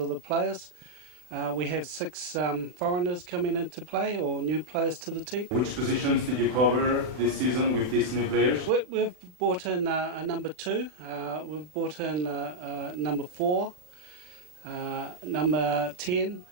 the players. We have 6 foreigners coming into play, or new players to the team. Which positions did you cover this season with these new players? We've brought in a number 2, we've brought in number 4, number 10,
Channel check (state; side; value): late; left; 39 ms